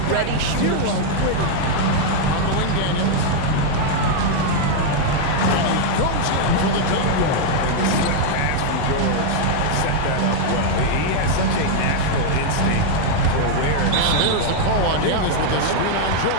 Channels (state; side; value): different; both; correlation 0.00